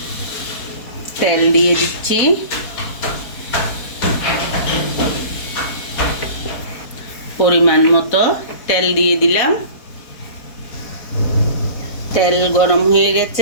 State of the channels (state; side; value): late; right; 4.5 ms